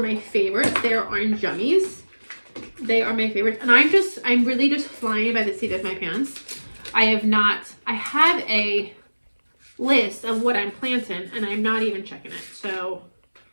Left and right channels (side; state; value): both; inverted; correlation -1.00